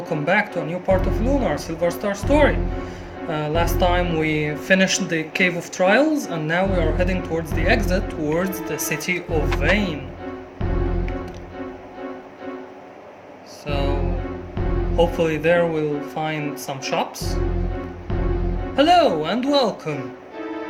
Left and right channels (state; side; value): identical; both; correlation 1.00